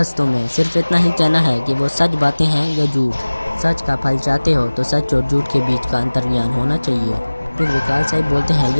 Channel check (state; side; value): inverted; both; correlation -1.00